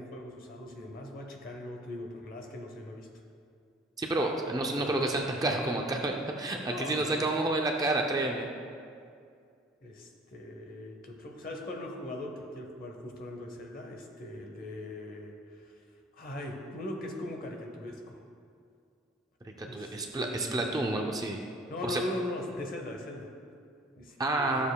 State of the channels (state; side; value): normal; both; correlation 0.49